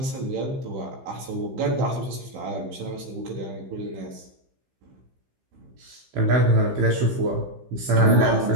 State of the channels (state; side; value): late; left; 15 ms